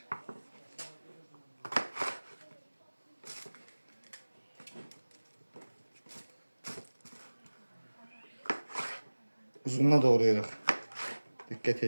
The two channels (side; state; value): both; inverted; correlation -1.00